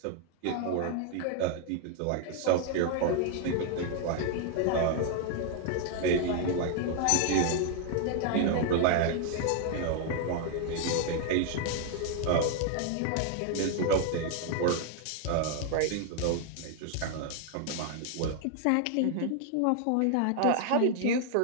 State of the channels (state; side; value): different; both; correlation 0.00